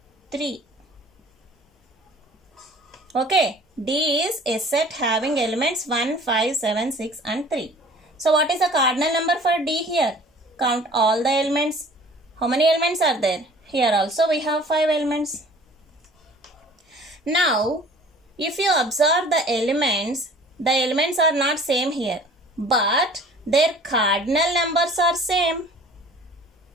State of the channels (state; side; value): normal; both; correlation 0.48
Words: 3. Okay, D is a set having elements 1, 5, 7, 6 and 3. So what is the cardinal number for D here? Count all the elements. How many elements are there? Here also we have 5 elements. Now, if you observe the elements are not same here, but their cardinal numbers are same.